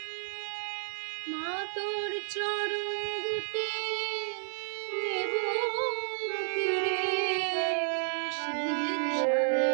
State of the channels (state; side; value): silent; left; 57 dB below the other